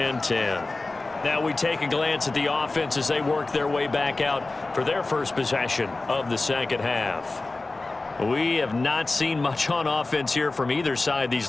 10. Now we take a glance at the offense as they work their way back out for their first possession of the 2nd half. We have not seen much on offense here from either side these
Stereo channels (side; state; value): right; quieter; 3.3 dB